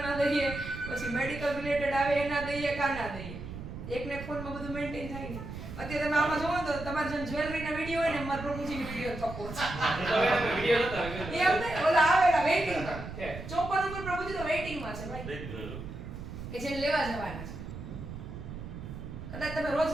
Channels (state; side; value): noise; right; rumble, 10 dB below the sound